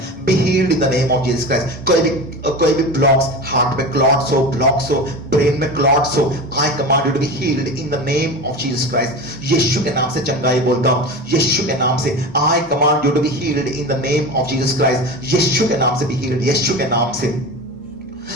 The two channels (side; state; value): both; normal; correlation 0.28